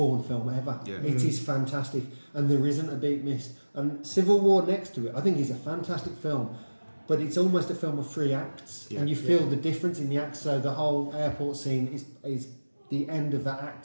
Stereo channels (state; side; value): inverted; both; correlation -1.00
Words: film ever. Yeah. It is fantastic. And there isn't a beat missed. And Civil War next to it, I think is a fantastic film. But it's almost a film of 3 acts. Yeah. And you feel the difference in the acts. So the whole airport scene is the end of that